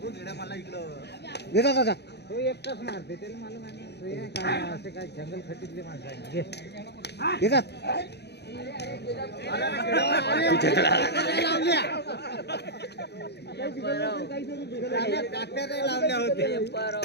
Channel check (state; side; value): late; right; 0.49 ms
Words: तो घेडा मला इकडं देता दादा तो एकटाच मारते त्याला मला माहिती नाही. काय असे काय जंगल खटीतले माणसं आहे. घे देता लावल्या होते. पेपर